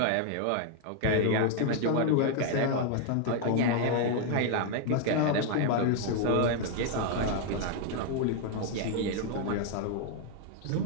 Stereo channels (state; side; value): different; both; correlation 0.00